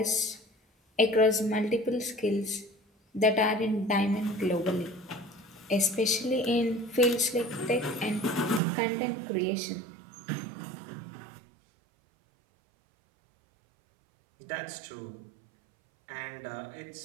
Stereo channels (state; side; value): drops out; left; at 8.6 s